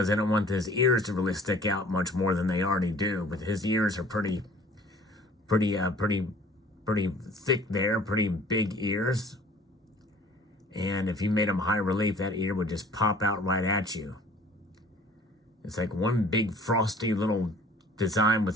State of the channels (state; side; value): normal; both; correlation 0.51